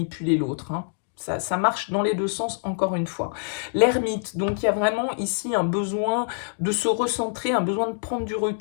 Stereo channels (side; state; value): right; silent; digital silence